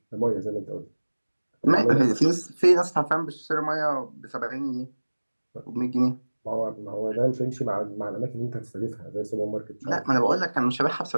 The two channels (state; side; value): inverted; both; correlation -1.00